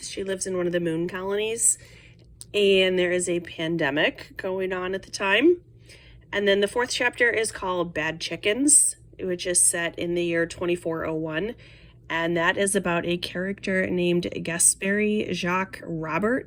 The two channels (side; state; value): both; identical; correlation 1.00